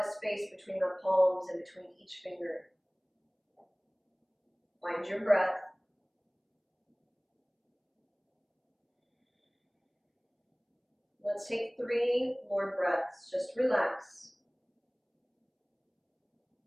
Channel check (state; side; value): identical; both; correlation 1.00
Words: space between my palms and between each finger. Find your breath. Let's take 3 more breaths. Just relax.